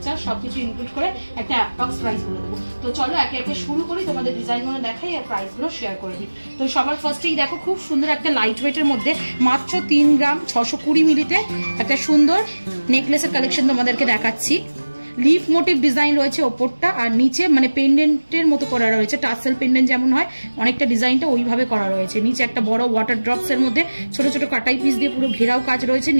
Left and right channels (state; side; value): inverted; both; correlation -1.00